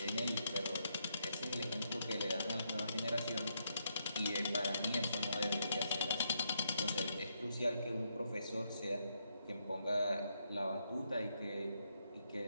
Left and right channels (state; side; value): inverted; both; correlation -0.78